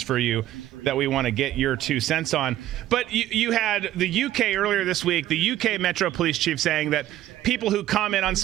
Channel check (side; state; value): left; quieter; 13.7 dB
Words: for you that we want to get your 2 cents on. But you had the UK earlier this week, the UK Metro Police Chief saying that people who comment on